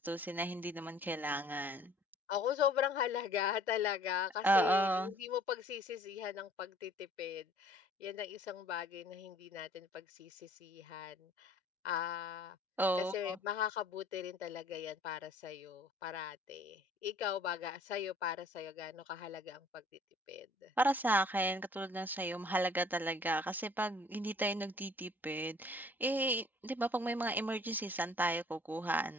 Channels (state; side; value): normal; both; correlation 0.55